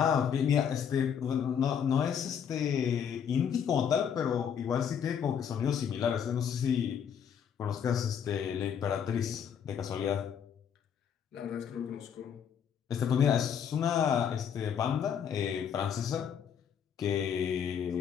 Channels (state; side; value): quieter; right; 8.0 dB